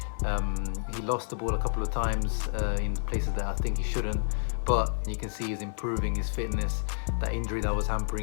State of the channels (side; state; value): right; silent; digital silence